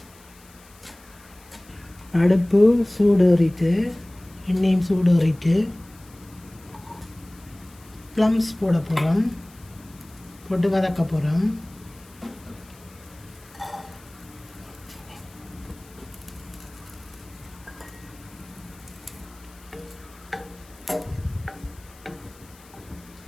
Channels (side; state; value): left; noise; hiss, 25 dB below the sound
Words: அடுப்பு சூடேறிட்டு எண்ணெயும் சூடேறிட்டு ப்ளம்ஸ் போட போகிறோம். போட்டு வதக்க போகிறோம்.